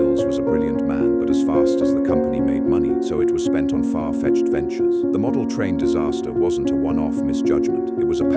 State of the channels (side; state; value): both; identical; correlation 1.00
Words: was a brilliant man, but as fast as the company made money, so it was spent on far-fetched ventures. The model train disaster wasn't a one-off misjudgment. It was a